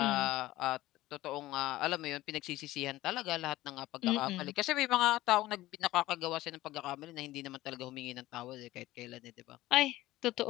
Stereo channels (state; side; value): quieter; right; 16.8 dB